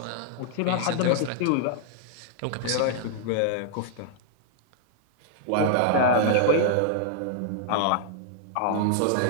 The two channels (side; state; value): both; different; correlation -0.01